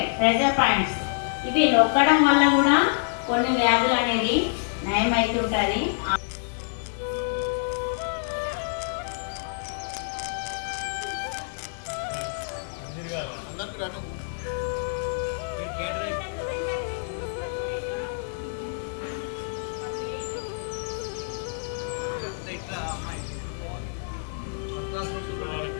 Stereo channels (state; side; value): silent; right; digital silence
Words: ప్రెజర్ పాయింట్స్. ఇవి నొక్కడం వల్ల కూడా కొన్ని వ్యాధులు అనేది నయం అవుతుంటుంది. అందరికీ రాటం. ఇట్లా అమ్మాయి ఫస్ట్ క్లాస్ చూడాలి,